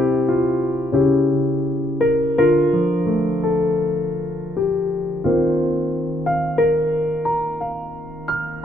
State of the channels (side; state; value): both; normal; correlation 0.74